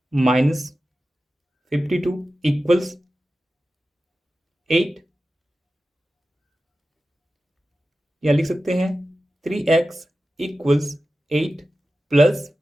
माइनस 52 इक्वल्स 8, या लिख सकते हैं 3x इक्वल्स 8 प्लस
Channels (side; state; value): both; normal; correlation 0.94